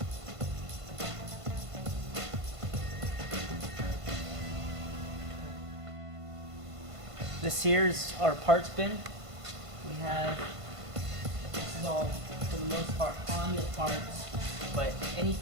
This here is our parts bin. We have, this is all for the most part Honda parts, but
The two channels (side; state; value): left; late; 1.5 ms